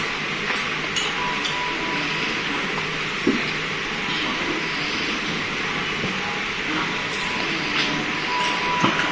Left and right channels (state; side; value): noise; right; hum, 30 dB below the sound